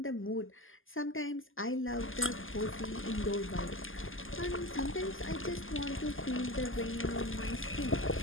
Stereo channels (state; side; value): late; right; 0.59 ms